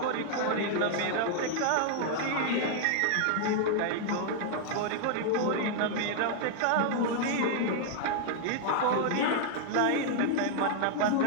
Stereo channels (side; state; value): both; different; correlation 0.00